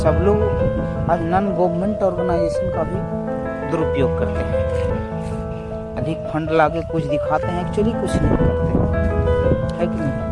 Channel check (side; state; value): both; identical; correlation 1.00